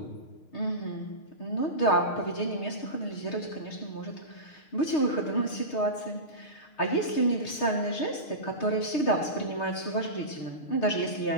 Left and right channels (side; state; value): right; late; 6.5 ms